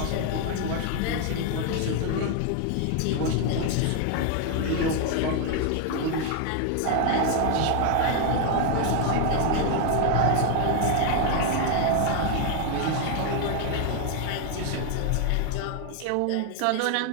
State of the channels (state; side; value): different; both; correlation 0.00